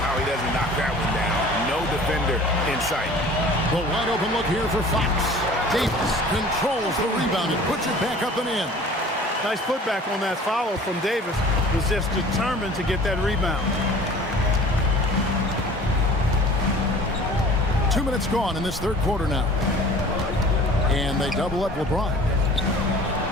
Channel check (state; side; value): normal; both; correlation 0.46